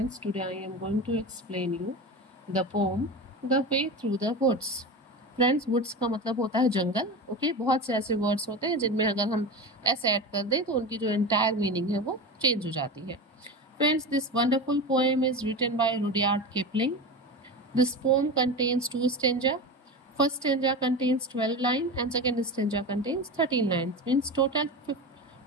today I am going to explain you the poem The Way Through the Woods. Friends, woods का मतलब होता है जंगल. Okay, बहुत से ऐसे words होते हैं जिनमें अगर हम एस ऐड कर दें तो उनकी जो एंटायर मीनिंग है वो चेंज हो जाती है. Friends, this wonderful poem is written by Rudyard Kipling. This poem contains two stanza. First stanza contains 12 lines and second stanza contains 13 lines. Means total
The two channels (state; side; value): normal; both; correlation 0.26